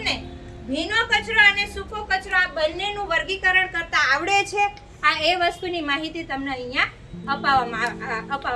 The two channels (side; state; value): both; identical; correlation 1.00